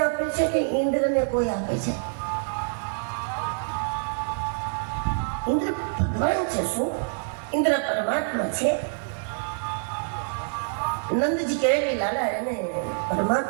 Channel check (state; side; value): silent; left; digital silence